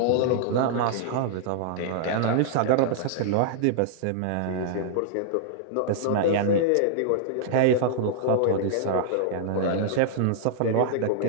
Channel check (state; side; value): different; both; correlation -0.01